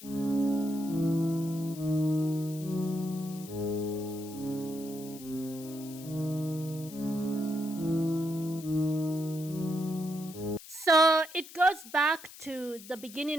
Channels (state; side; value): noise; left; hiss, 16 dB below the sound